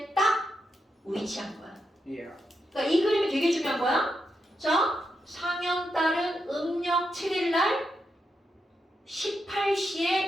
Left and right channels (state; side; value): normal; both; correlation 0.84